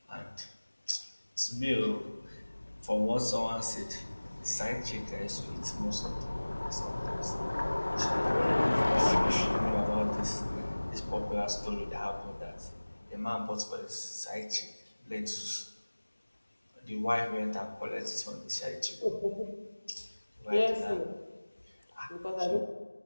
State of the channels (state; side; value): inverted; both; correlation -1.00